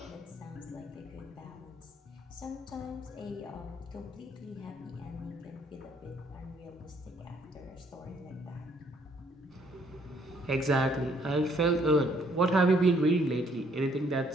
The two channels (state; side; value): normal; both; correlation 0.66